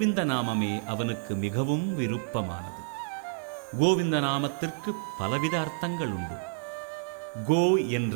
நாமமே அவனுக்கு மிகவும் விருப்பமானது. கோவிந்த நாமத்திற்கு பலவித அர்த்தங்கள் உண்டு. கோ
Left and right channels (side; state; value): left; silent; digital silence